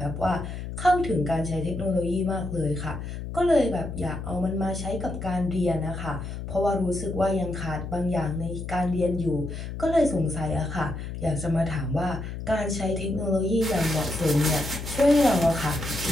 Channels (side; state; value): left; noise; hum, 7 dB below the sound